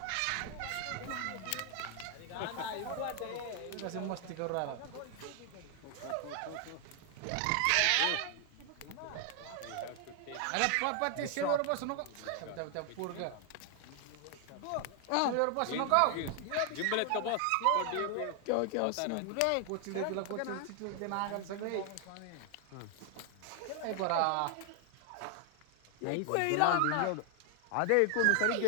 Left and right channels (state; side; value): different; both; correlation 0.00